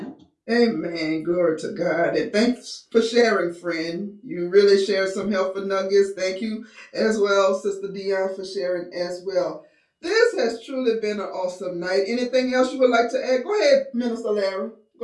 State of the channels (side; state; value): both; identical; correlation 1.00